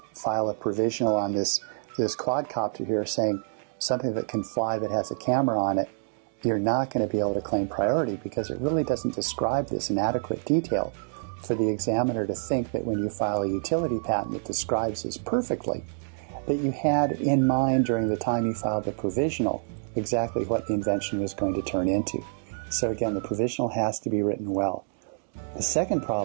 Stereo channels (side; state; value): left; silent; digital silence